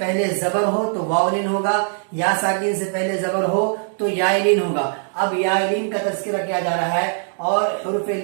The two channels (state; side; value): silent; left; 65 dB below the other